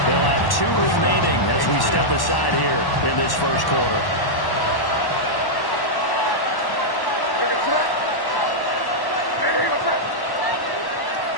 They'll have 2 remaining as we step aside here in this first quarter.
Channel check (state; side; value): late; right; 1.1 ms